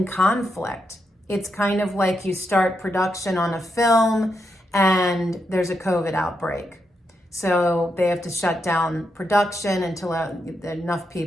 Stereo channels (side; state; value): both; normal; correlation 0.83